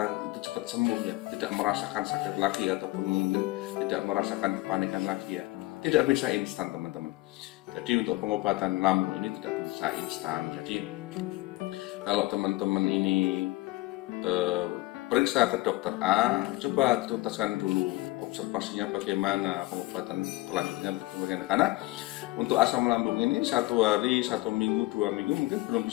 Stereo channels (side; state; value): right; quieter; 20.0 dB